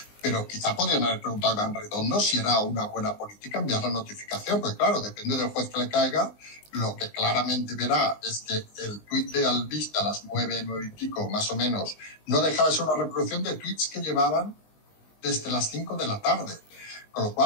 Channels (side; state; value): right; late; 19 ms